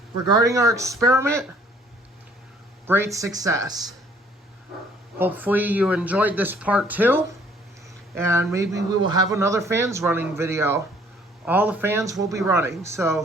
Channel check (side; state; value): both; normal; correlation 0.59